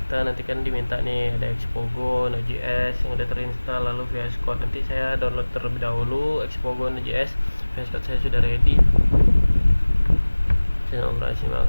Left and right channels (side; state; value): both; inverted; correlation -1.00